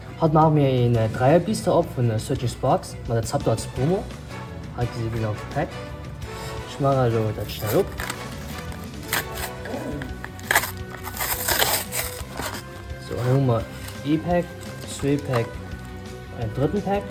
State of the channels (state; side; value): identical; both; correlation 1.00